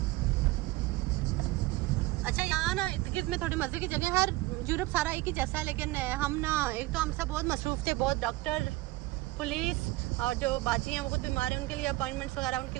अच्छा यहाँ ना इर्द गिर्द में थोड़ी मजे की जगह है। यूरोप सारा एक ही जैसा है। लेकिन हम ना एक तो हम सब बहुत मसरूफ थे, बहुत डॉक्टर पुलिस और जो बाजी हैं वो खुद बीमार हैं, उनके लिए अपॉइंटमेंट्स वगैरह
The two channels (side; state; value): left; quieter; 19.6 dB